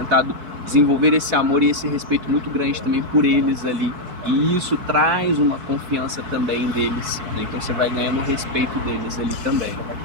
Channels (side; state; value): left; late; 4.6 ms